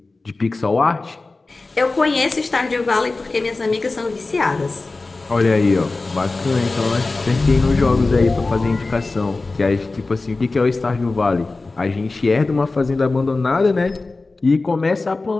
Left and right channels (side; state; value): right; quieter; 3.5 dB